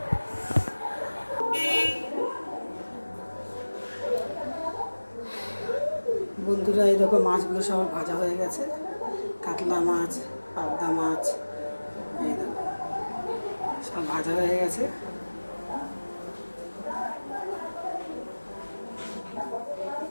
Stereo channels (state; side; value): inverted; both; correlation -1.00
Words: বন্ধুরা, এই দেখো মাছগুলো সব ভাজা হয়ে গেছে। কাতলা মাছ, পাবদা মাছ, এই দেখো সব ভাজা হয়ে গেছে।